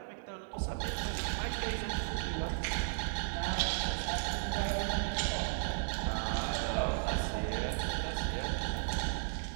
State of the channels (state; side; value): silent; left; digital silence